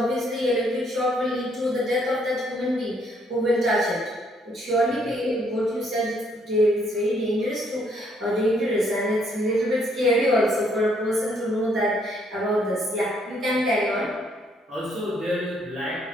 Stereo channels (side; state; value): both; normal; correlation 0.69